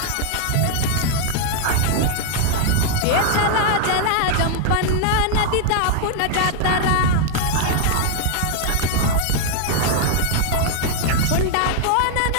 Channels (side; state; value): both; different; correlation 0.00